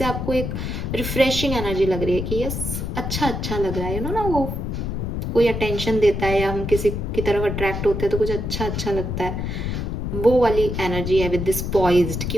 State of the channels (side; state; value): left; noise; rumble, 3 dB below the sound